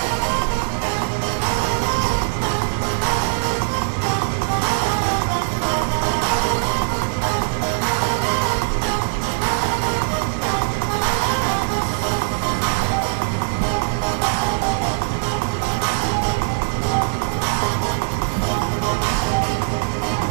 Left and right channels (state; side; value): silent; left; digital silence